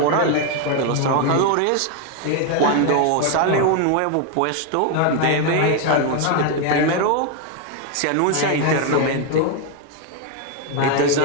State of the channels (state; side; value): different; both; correlation 0.01